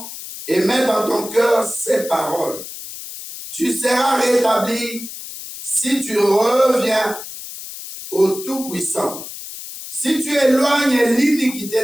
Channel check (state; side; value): noise; left; hiss, 11 dB below the sound